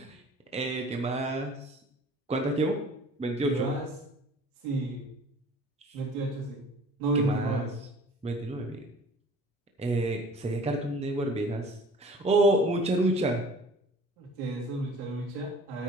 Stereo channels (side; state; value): both; normal; correlation 0.48